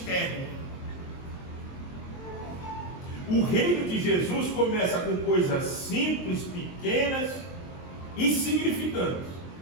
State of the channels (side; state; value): right; late; 23 ms